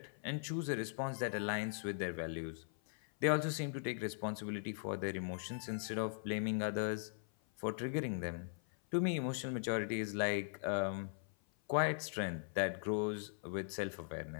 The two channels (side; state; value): right; silent; 51 dB below the other